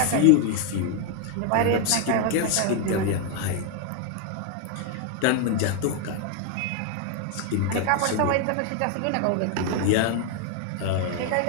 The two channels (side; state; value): both; different; correlation 0.00